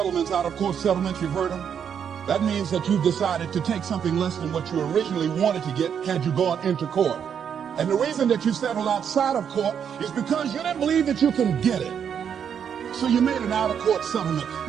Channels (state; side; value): quieter; left; 7.9 dB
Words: out of court settlements, you've heard them? That means that you've decided to take something less than what you originally wanted to get had you gone into court. And the reason that you settled outside of court is because you didn't believe that you can get it. So you made an out-of-court settlement.